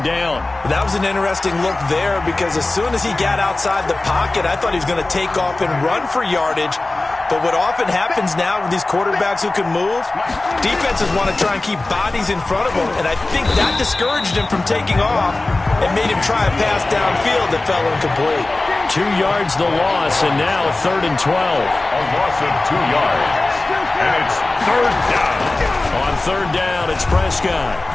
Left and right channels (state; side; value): quieter; right; 3.0 dB